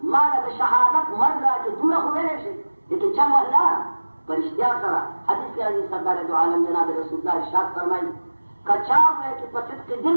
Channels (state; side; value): inverted; both; correlation -1.00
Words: ما له د شهادت مرګ راکړي دومره خو ویلی شي لیکن چم الله په رښتیا سره حدیث کې راځي سرکار دو عالم جناب رسول الله ارشاد فرمایي که چا وایي چې په صدق دل